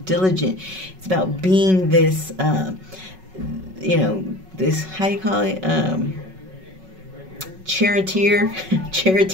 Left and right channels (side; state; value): left; late; 5.4 ms